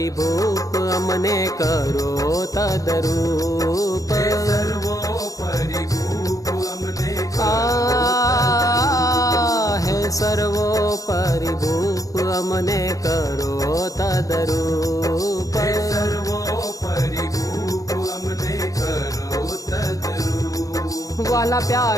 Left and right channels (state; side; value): late; right; 0.17 ms